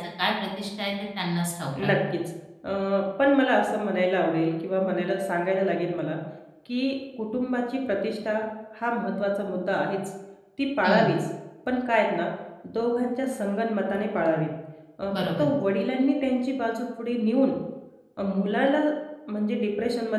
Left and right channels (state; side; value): identical; both; correlation 1.00